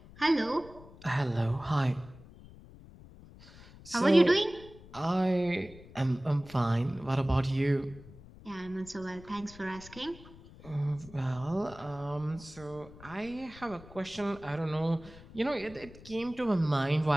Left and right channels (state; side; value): noise; left; rumble, 19 dB below the sound